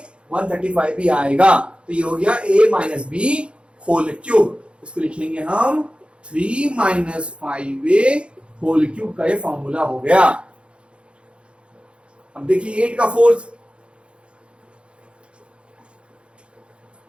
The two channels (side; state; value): left; late; 0.058 ms